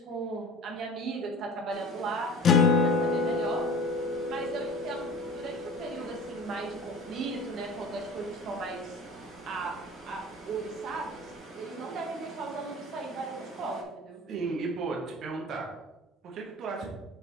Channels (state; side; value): normal; both; correlation 0.39